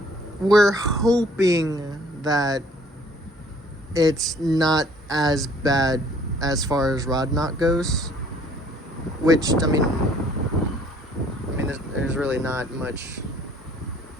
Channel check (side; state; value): both; normal; correlation 0.58